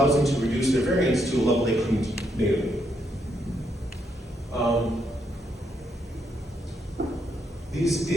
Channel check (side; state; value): both; normal; correlation 0.77